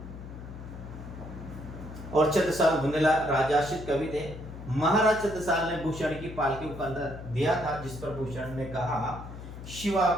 और छत्रसाल बुंदेला राजाश्रित कवि थे। महाराज छत्रसाल ने भूषण की पालकी को कंधा दिया था, जिस पर भूषण ने कहा शिवा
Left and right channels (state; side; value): noise; left; hum, 12 dB below the sound